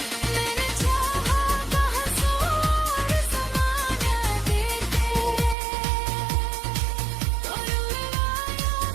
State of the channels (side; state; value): left; drops out; at 5.6 s